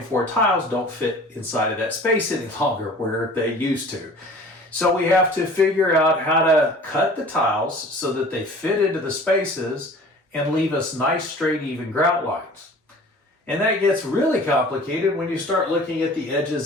tiles don't fit inside of that space any longer where they used to. So we have to figure out how to cut the tiles so that they fit into the spaces and leave us nice, straight, even grout lines. And that gets really complicated when you start looking at the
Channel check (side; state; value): both; normal; correlation 0.45